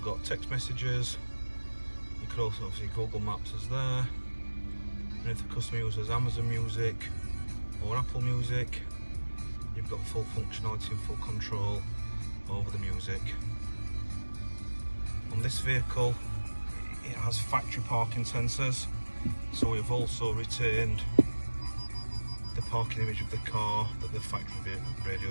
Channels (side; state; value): both; inverted; correlation -1.00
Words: text messages. You could also obviously Google Maps is there. And if the customer uses Amazon Music or Apple Music, you've got full functionality and full control over the music. On this vehicle, it has factory parking sensors. So we've also retained the parking image of the car that the factory radio